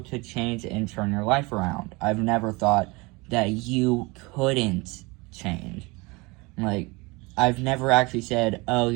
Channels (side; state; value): left; quieter; 25.3 dB